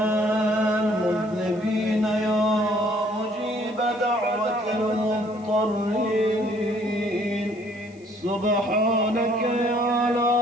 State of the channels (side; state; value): left; noise; hiss, 30 dB below the sound